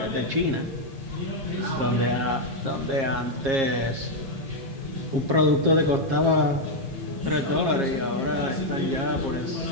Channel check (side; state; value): left; late; 7.4 ms